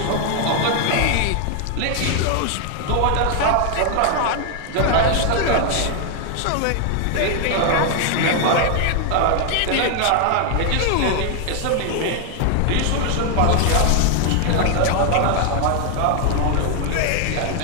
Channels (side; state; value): both; different; correlation 0.00